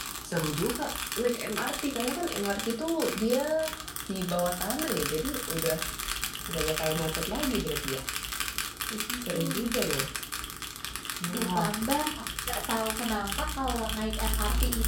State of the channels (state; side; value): identical; both; correlation 1.00